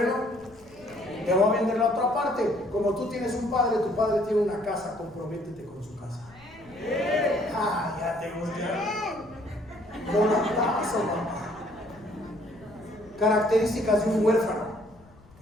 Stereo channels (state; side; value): noise; left; rumble, 25 dB below the sound